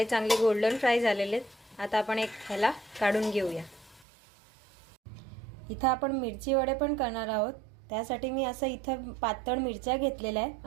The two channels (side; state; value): left; drops out; at 4.0 s